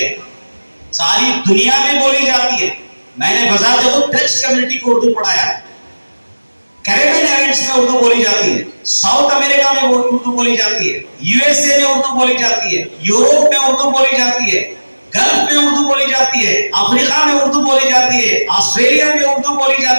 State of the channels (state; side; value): inverted; both; correlation -1.00